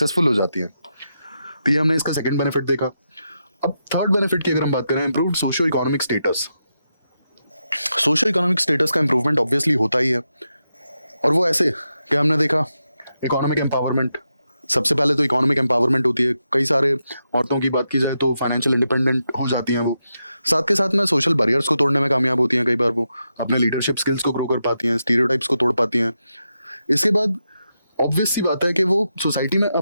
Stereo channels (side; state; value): both; inverted; correlation -0.86